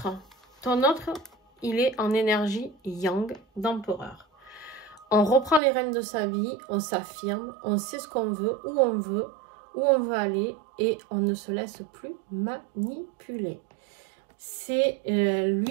il est en énergie yang d'empereur. On reprend les rênes de sa vie, on s'affirme, on sait ce qu'on veut, où on veut aller, et on ne se laisse plus manipuler. C'est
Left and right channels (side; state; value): left; drops out; at 5.6 s